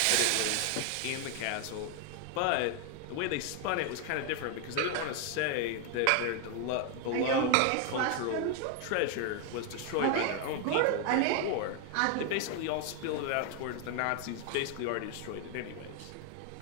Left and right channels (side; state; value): both; different; correlation 0.01